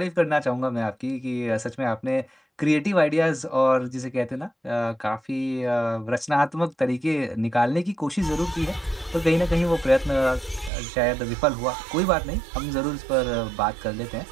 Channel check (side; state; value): left; drops out; at 10.7 s